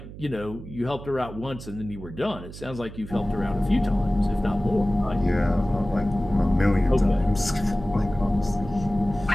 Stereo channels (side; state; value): right; noise; hum, 13 dB below the sound